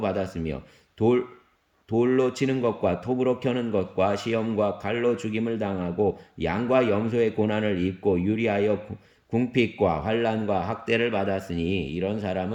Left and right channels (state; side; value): identical; both; correlation 1.00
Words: 받았으며 돌로 치는 것과 톱으로 켜는 것과 시험과 칼로 죽임을 당하고 양과 염소의 고난을 입고 유리하여 궁핍과 환난과 학대를 받았으니 이런